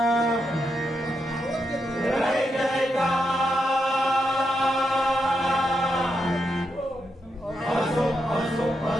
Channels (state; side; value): normal; both; correlation 0.83